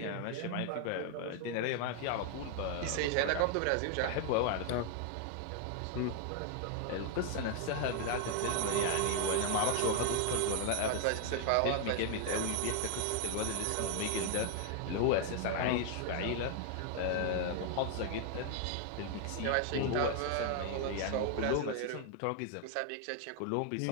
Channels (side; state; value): both; different; correlation 0.00